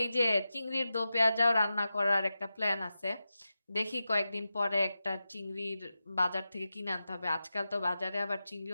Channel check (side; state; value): both; inverted; correlation -0.92